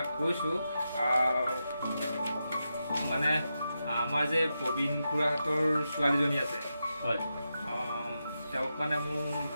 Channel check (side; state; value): both; inverted; correlation -0.88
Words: কৈছোঁ, মানে আমাৰ যে প্ৰবীণ খুৰাহঁতৰ ছোৱালীজনী আছে, হয়, তেওঁক মানে মোৰ